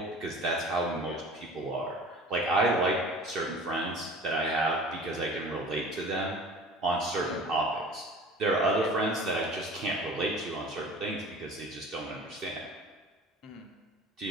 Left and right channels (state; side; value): normal; both; correlation 0.42